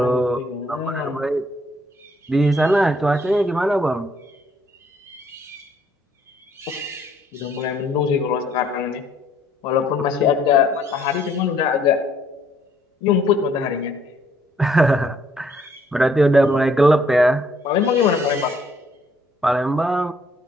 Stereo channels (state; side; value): normal; both; correlation 0.65